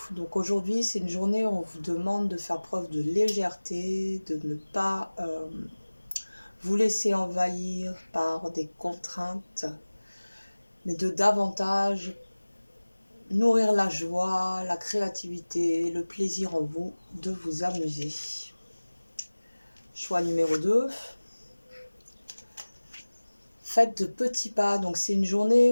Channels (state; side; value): inverted; both; correlation -1.00